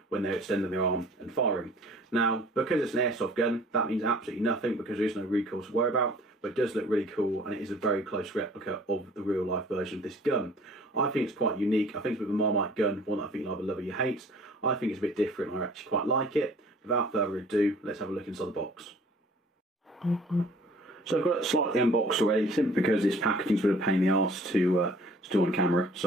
when they're extending their arm and firing. Now because it's an airsoft gun that means absolutely nothing because there is no recoil to worry about, but it does look really cool and it is a very close replica of the real life version of this gun. I think it's quite unique. I think it's a bit of a Marmite gun, one that I think you'll either love or you hate. I think it's a bit different, I actually quite like it. Without further ado, let's have a look inside the box. So I've got it slightly unboxed already, simply because this packaging's a bit of a pain in the arse to do on camera,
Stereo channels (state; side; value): normal; both; correlation 0.52